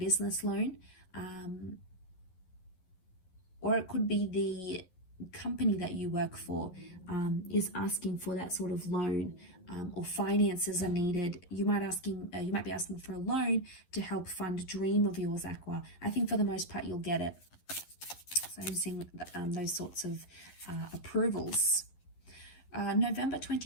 loan. Or it could be the company that you work for is asking for that sort of loan, or finances are needed. You might be asking for a loan to help fund a dream of yours, Aqua. I think for the most part you'll get it. So I'm seeing those sorts of approvals. November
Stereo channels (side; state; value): right; late; 11 ms